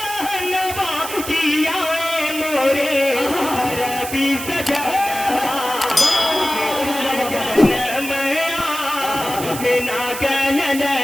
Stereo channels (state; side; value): noise; right; hiss, 9 dB below the sound